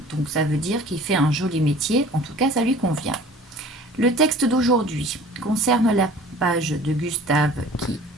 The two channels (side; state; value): both; normal; correlation 0.46